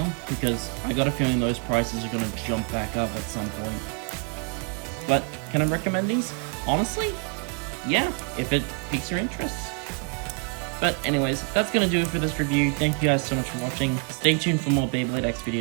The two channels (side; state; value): left; quieter; 34.7 dB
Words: because I got a feeling those prices are going to jump back up at some point. But can I recommend these? Honestly, yeah, if it piques your interest. But anyways, that's going to do it for this review. Thank you guys so much for watching. Stay tuned for more Beyblade X